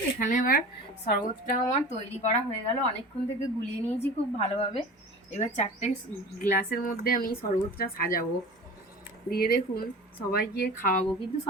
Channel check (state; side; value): normal; both; correlation 0.37